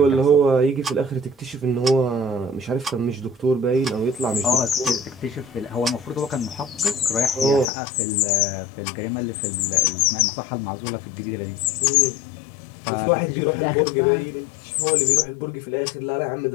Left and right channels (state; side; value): drops out; right; at 7.7 s